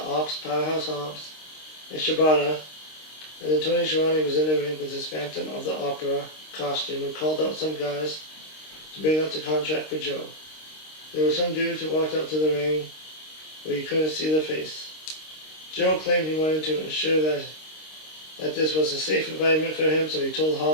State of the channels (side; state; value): right; late; 26 ms